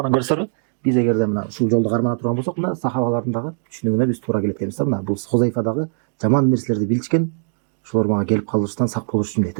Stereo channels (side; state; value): left; silent; digital silence